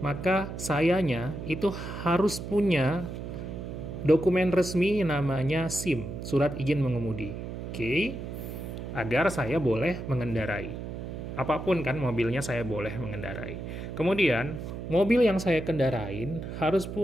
sayanya itu harus punya dokumen resmi namanya SIM, surat izin mengemudi. Oke, agar saya boleh mengendarai. Apapun kan mobilnya saya boleh mengendarai. Kemudian, mobil yang saya kendarain harus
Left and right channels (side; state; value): right; noise; hum, 7 dB below the sound